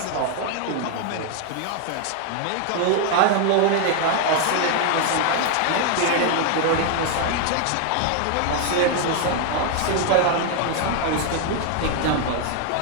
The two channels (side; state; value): both; different; correlation 0.00